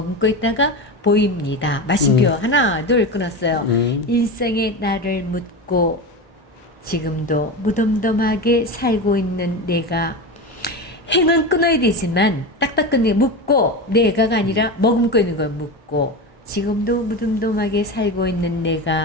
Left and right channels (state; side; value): normal; both; correlation 0.22